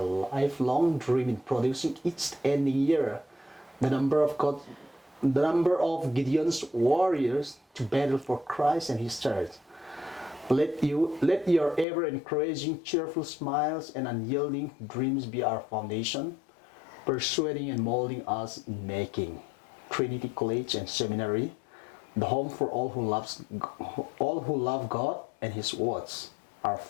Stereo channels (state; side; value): drops out; right; at 11.9 s